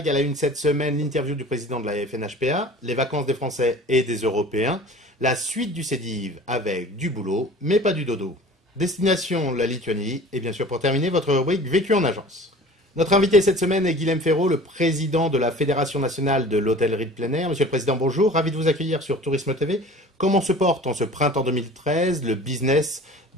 À la une cette semaine, l'interview du président de la FNHPA, les vacances des Français et des Européens, la suite du CEDIV avec du boulot, mais pas du dodo. Destination la Lituanie et bien sûr pour terminer, votre rubrique Vécu en agence. Notre invité cette semaine est Guilhem Ferraud, le président de la Fédération nationale de l'hôtellerie de plein air. Monsieur le Président, bonjour, ravi de vous accueillir sur Tourisme TV. Comment se porte en ce printemps 2013 le business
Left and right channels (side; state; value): both; normal; correlation 0.43